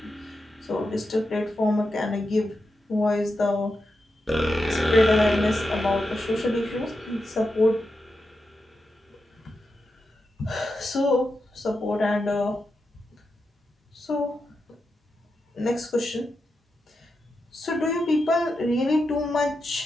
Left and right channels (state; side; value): normal; both; correlation 0.88